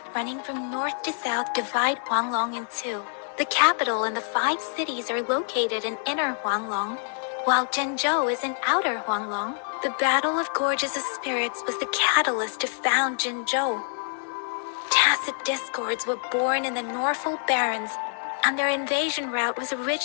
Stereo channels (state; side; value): silent; right; digital silence